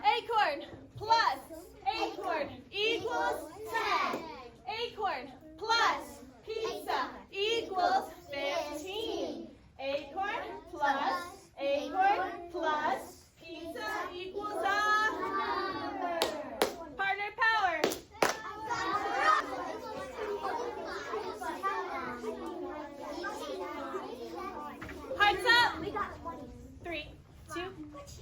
plus acorn equals 10. Acorn plus pizza equals 15. Acorn plus acorn plus pizza equals a number. Partner power. Hearts up. 3, 2,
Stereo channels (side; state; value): both; identical; correlation 1.00